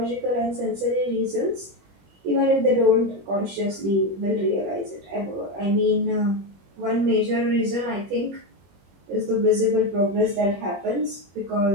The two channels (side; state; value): left; late; 21 ms